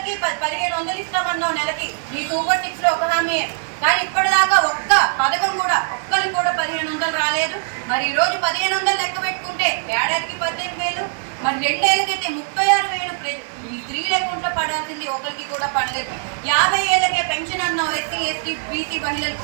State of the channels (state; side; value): silent; left; 65 dB below the other